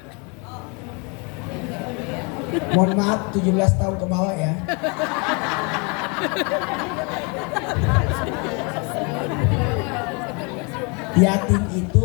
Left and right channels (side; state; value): right; quieter; 32.3 dB